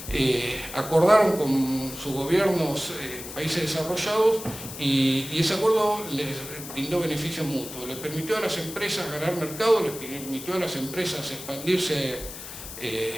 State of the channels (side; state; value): left; noise; hiss, 11 dB below the sound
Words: acordaron con sus gobiernos países desarrollados y ese acuerdo les brindó beneficios mutuos. Les permitió a las empresas ganar mercado, les permitió a las empresas expandirse